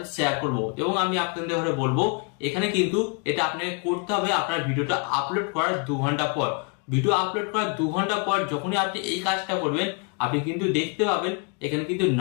শেয়ার করব, এবং আমি আপনাদের বলবো এখানে কিন্তু এটা আপনাকে করতে হবে আপনার ভিডিওটা আপলোড করার 2 ঘন্টা পর। ভিডিও আপলোড করার 2 ঘন্টা পর যখনই আপনি এই কাজটা করবেন, আপনি কিন্তু দেখতে পাবেন এখানে কিন্তু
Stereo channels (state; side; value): quieter; right; 34.6 dB